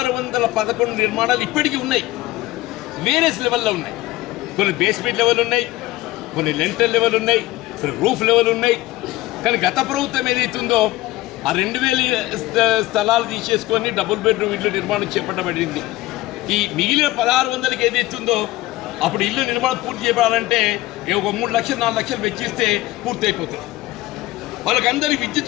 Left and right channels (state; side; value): quieter; right; 18.0 dB